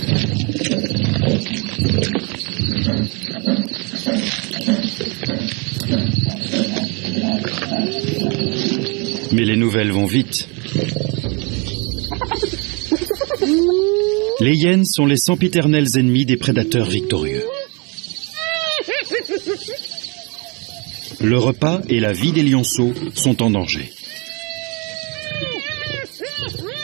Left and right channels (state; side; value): quieter; left; 31.0 dB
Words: Mais les nouvelles vont vite. Les hyènes sont les sempiternels ennemis des prédateurs victorieux. Le repas et la vie des lionceaux sont en danger.